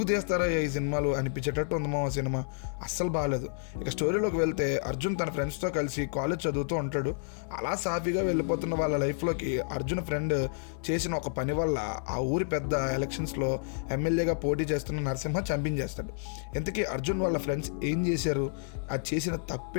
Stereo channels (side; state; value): right; silent; 58 dB below the other